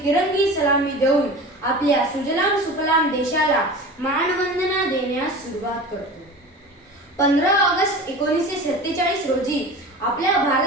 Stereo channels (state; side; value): normal; both; correlation 0.35